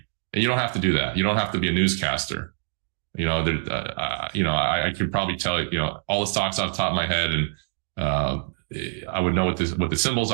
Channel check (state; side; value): silent; left; 62 dB below the other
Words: And you don't have to do that. You don't have to be a newscaster. I could probably tell all the stocks off the top of my head, and I would know what the symbols